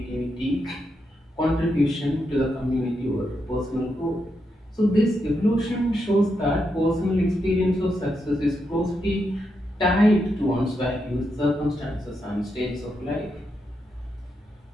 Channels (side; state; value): both; normal; correlation 0.83